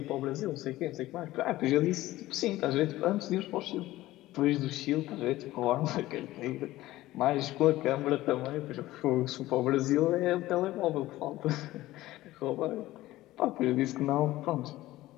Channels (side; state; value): right; quieter; 16.6 dB